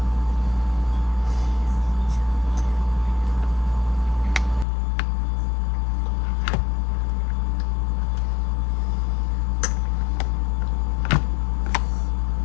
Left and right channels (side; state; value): right; drops out; at 4.7 s